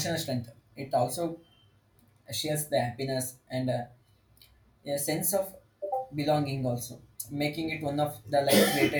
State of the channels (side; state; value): both; identical; correlation 1.00